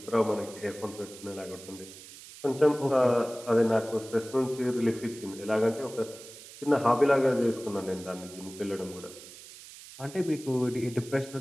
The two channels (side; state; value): right; noise; hiss, 17 dB below the sound